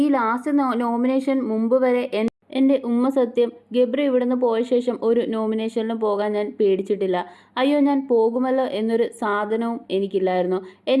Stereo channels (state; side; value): identical; both; correlation 1.00